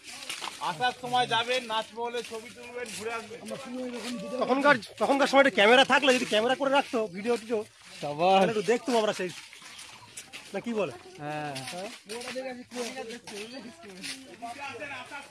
আসার সময় যাবেন, নাচমহলে ছবি তুলবেন, ঘুরে আসবেন। তখনকার সময় ক্যামেরা থাকলে, যদি ক্যামেরা করে রাখতো ভিডিও টিডিও, তাহলে একটু দেখতাম আমরা সেই, না কি বলে? হ্যাঁ, আসার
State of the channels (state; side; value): identical; both; correlation 1.00